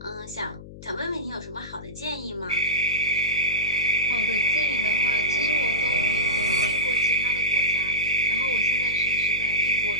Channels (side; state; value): left; noise; hum, 16 dB below the sound